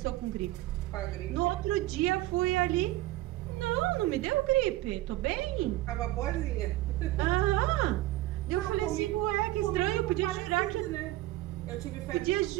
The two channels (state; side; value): quieter; left; 17.0 dB